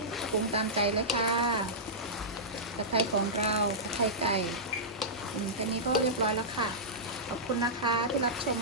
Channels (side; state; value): both; normal; correlation -0.14